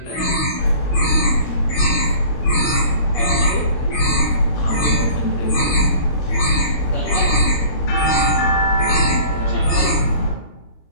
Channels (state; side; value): late; right; 17 ms